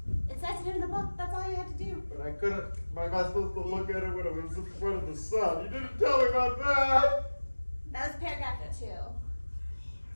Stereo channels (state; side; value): inverted; both; correlation -1.00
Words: It says it in the book. That's all you have to do. But I couldn't. Am I supposed to look at it when it was in front of the sun? You didn't tell me about that. That was paragraph 2.